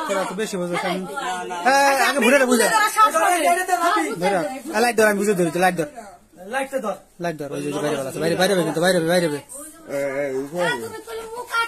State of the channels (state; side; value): identical; both; correlation 1.00